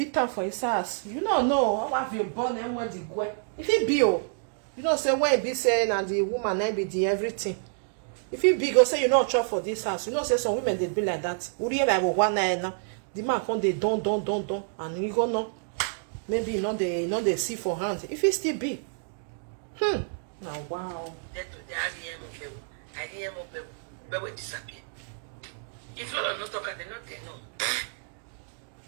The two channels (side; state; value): left; silent; digital silence